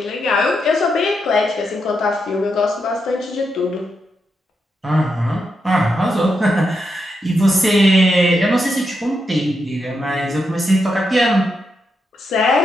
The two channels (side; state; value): both; normal; correlation 0.84